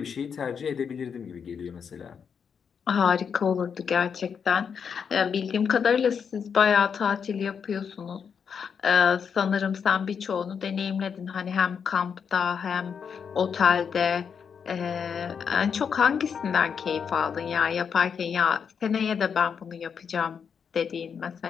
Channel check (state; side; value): quieter; right; 6.8 dB